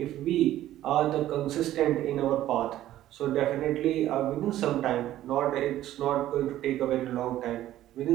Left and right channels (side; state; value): left; quieter; 13.5 dB